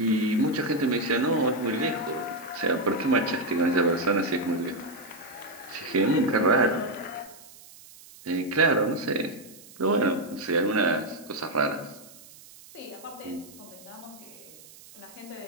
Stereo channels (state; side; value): noise; right; hiss, 21 dB below the sound